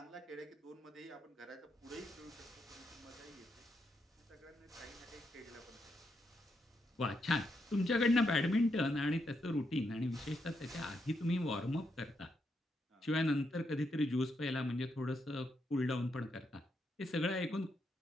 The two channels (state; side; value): normal; both; correlation 0.81